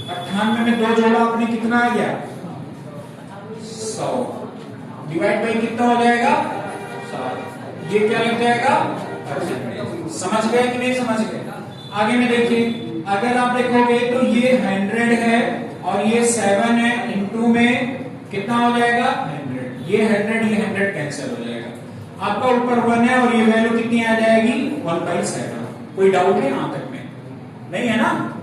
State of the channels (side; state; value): both; identical; correlation 1.00